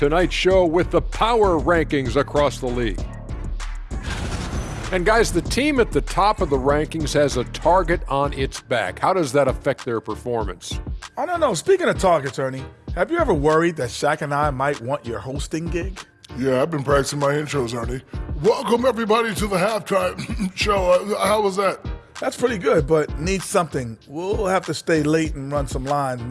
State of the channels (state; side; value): identical; both; correlation 1.00